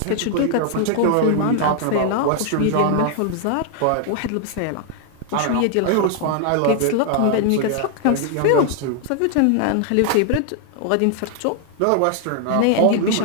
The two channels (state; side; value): different; both; correlation 0.00